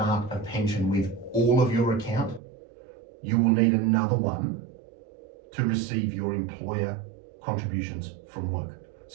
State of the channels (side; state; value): left; drops out; at 2.4 s